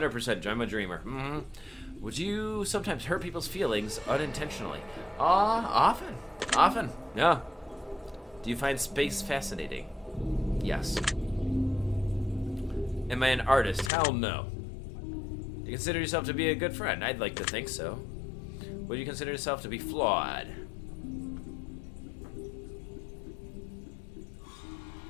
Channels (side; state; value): right; drops out; at 13.9 s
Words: I'm a dreamer? Mm-hmm. Would you sometimes hurt people's feelings unintentionally? Often, yeah. Do you find space fascinating? Yes. Am I an artist? Hell no. Do you consider yourself to be a good friend? I'd like to think so. Would you consider yourself to be flawed?